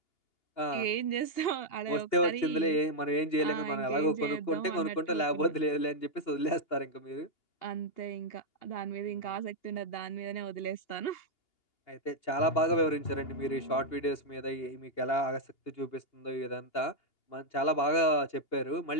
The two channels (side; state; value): right; late; 2.8 ms